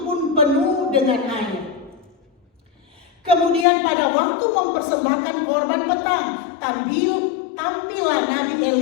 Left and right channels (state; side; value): drops out; right; at 3.7 s